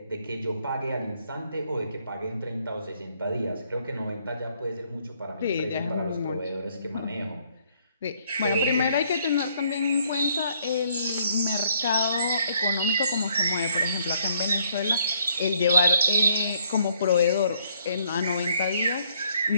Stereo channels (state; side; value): inverted; both; correlation -0.68